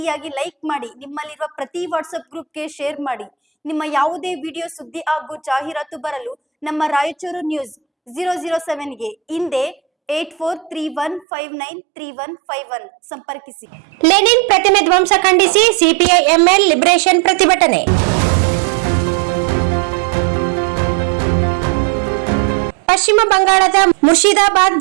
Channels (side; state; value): left; drops out; at 11.2 s